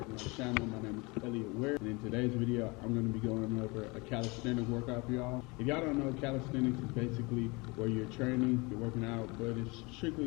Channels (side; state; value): right; quieter; 26.5 dB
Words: to my channel. My name is Elliot Ware, and in today's video I'm going to be going over a calisthenics workout for y'all. If y'all don't know, calisthenics is basically where you're training, you're working out, but it's